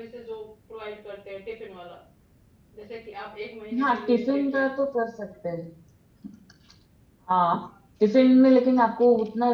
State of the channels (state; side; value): identical; both; correlation 1.00